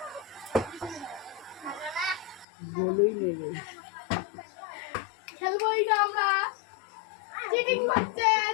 বলেই নেবে। খেলবো এটা আমরা। চিটিং হচ্ছে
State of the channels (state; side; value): drops out; right; at 2.5 s